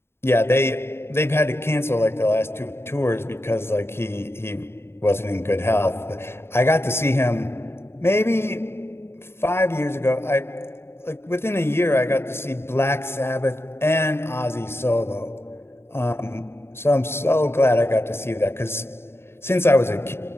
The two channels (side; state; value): right; late; 0.12 ms